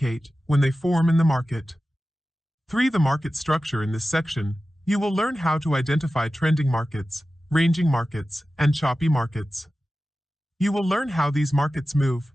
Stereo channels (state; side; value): normal; both; correlation 0.95